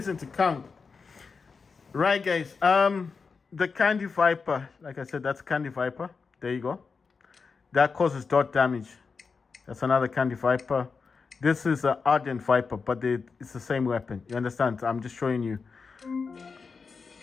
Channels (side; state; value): right; quieter; 5.0 dB